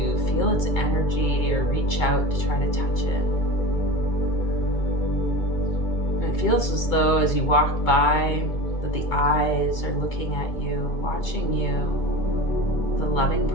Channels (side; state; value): right; late; 2.3 ms